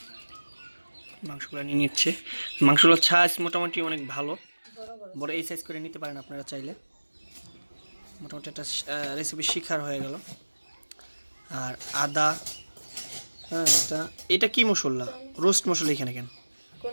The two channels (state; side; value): inverted; both; correlation -1.00